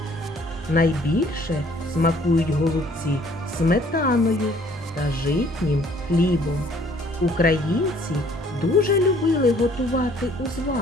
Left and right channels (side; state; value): both; normal; correlation 0.59